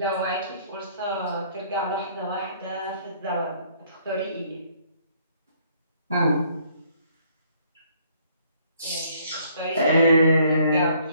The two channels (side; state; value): both; inverted; correlation -0.63